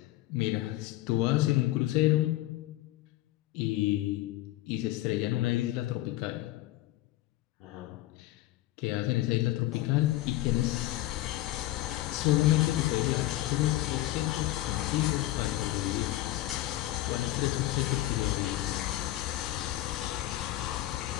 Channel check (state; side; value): quieter; right; 16.1 dB